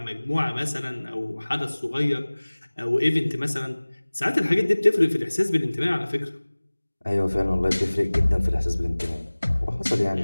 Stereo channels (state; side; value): inverted; both; correlation -1.00